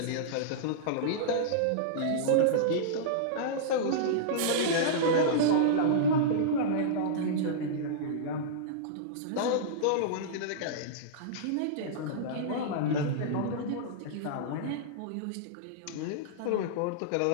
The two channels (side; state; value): both; different; correlation -0.03